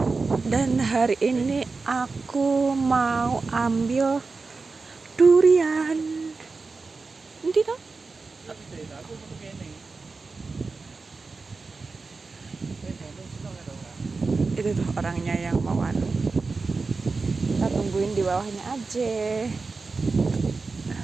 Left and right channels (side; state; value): left; quieter; 4.1 dB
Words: Dan hari ini aku mau ambil durian. Nanti toh? Itu tuh orangnya yang mau anu. Kita tungguin di bawahnya aja.